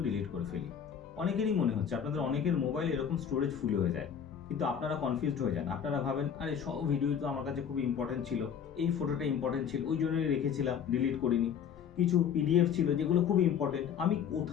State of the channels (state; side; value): quieter; right; 8.0 dB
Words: ডিলিট করে ফেলি। অনেকেরই মনে হচ্ছে আপনাদের অনেকের মোবাইলে এরকম স্টোরেজ ফুল হয়ে যায়, কিন্তু আপনারা কনফিউজড হয়ে যান। আপনারা ভাবেন আরে সব ভিডিও তো আমার কাছে খুব ইম্পর্টেন্ট ছিল, এই ফটোটা ইম্পর্টেন্ট ছিল ওই জন্যই রেখেছিলাম, ডিলিট করিনি। কিছু পিডিএফ ছিল যেগুলো খুব ইম্পর্টেন্ট, আমি